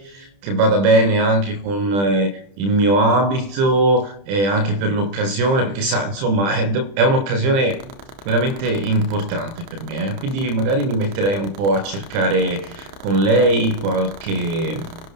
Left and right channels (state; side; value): late; left; 30 ms